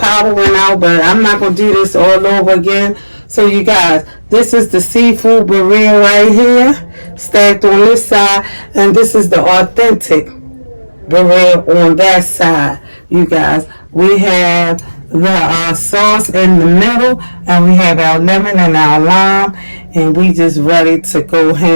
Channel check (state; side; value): inverted; both; correlation -1.00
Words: went out, but I'm not going to do this all over again. So, you guys, this is the seafood birria right here, stacked on this side, and this is the authentic birria on that side. You guys, we have the sauce in the middle, and we have our lemon and our lime, and we just ready to go